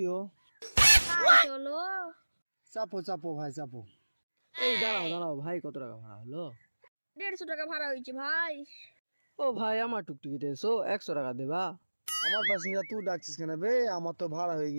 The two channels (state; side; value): inverted; both; correlation -1.00